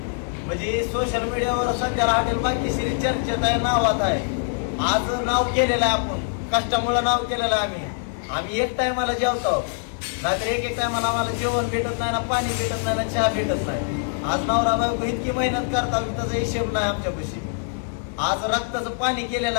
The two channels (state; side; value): silent; right; digital silence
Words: म्हणजे सोशल मीडियावर सध्याला हॉटेल भाग्यश्री चर्चेत आहे, नावात आहे, आज नाव केलेलं आहे, आपण कष्टामुळे नाव केलेलं आहे। आम्ही एक टायमाला जेवतो, नाहीतर एक टायमाला आम्हाला जेवण भेटत नाही, ना पाणी भेटत नाही, ना चहा भेटत नाही। आज नवरा बायको इतकी मेहनत करतात त्याचा हिशेब नाही आमच्यापाशी। आज रक्ताचं पाणी केलेलं